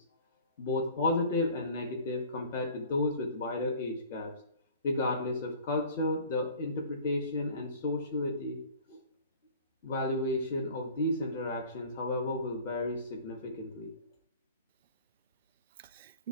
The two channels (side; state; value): both; inverted; correlation -0.46